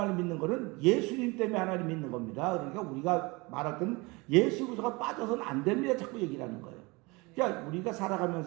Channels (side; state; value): left; quieter; 25.3 dB